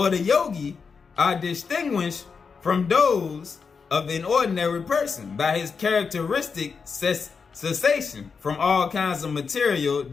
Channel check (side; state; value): right; quieter; 5.5 dB